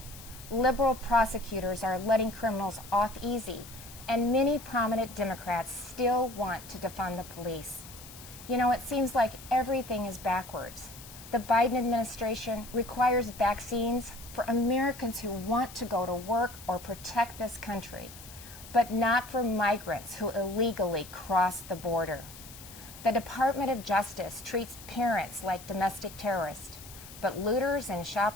Liberal prosecutors are letting criminals off easy, and many prominent Democrats still want to defund the police. You know, it seems like everything is backwards. The Biden administration requires vaccines for Americans who want to go to work or protect this country, but not for migrants who illegally cross the border. The Department of Justice treats parents like domestic terrorists, but looters and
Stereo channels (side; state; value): left; noise; hiss, 16 dB below the sound